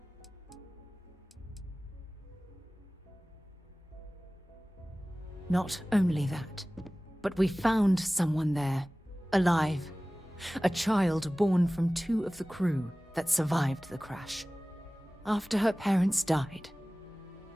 Not only that, but we found someone there, alive. A child born from 2 of the crew that survived the crash. After her parents died,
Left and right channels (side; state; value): both; normal; correlation 0.98